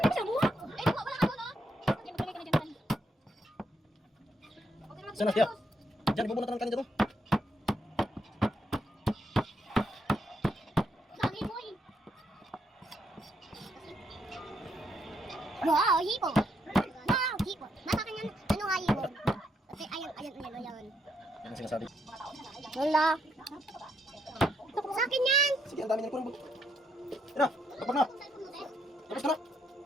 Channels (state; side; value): normal; both; correlation 0.76